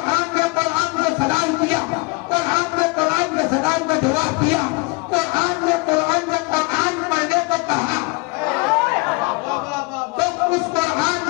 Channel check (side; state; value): right; quieter; 27.9 dB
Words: ने कुरान को सलाम किया, कुरान ने कुरान के सलाम को जवाब दिया, कुरान ने कुरान से कुरान पढ़ने को कहा। तो उस कुरान